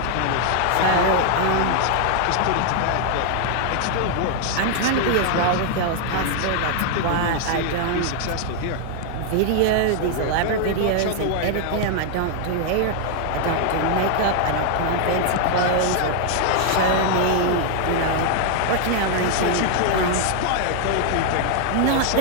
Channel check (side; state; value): both; different; correlation 0.00